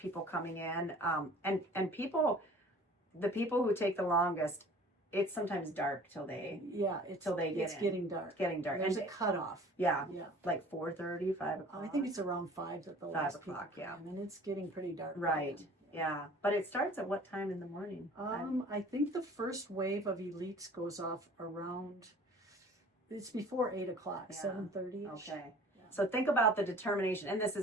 coming in. And people, the people who take the longest, it's sometimes dark till they it's get getting dark. There's a cutoff. Yeah. Like 4:30, 5 o'clock. I think it's around 5 that the 5 last o'clock, people come in, and it's getting pretty dark. Right. Yeah. But it starts at what time in the morning? I think the first wave of elites goes off around, it's before 8 o'clock, 7:30. Okay. Yeah. So think about the determination, and this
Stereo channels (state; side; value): normal; both; correlation 0.47